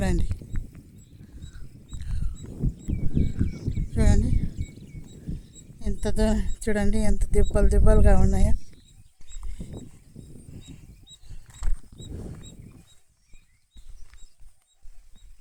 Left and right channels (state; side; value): identical; both; correlation 1.00